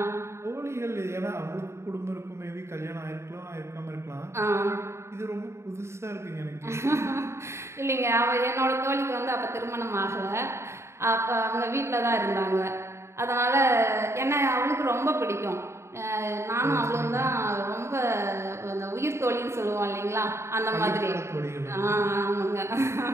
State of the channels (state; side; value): late; left; 0.13 ms